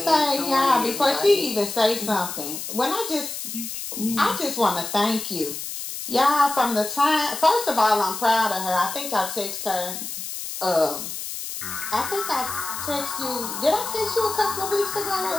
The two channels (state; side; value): noise; left; hiss, 7 dB below the sound